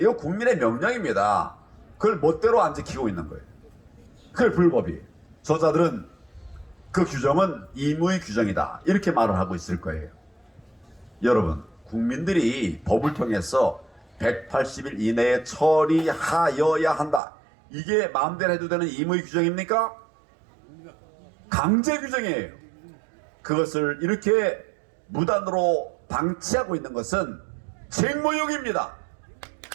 이거 국민의 명령입니다. 그걸 멋대로 안 지키고 있는 거예요. 그게 불법이에요. 저자들은 그 규정은 임의 규정이다, 이렇게 말을 하고 있을 거예요. 여러분, 국민들이 법을 통해서 180일 이내에 처리하여야 한다, 이게 마음대로 해도 되는 임의 규정입니까? 강제 규정이에요. 그것을 이렇게 무단으로 방치하고 있는 것은 책무유기입니다.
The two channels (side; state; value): left; drops out; at 17.2 s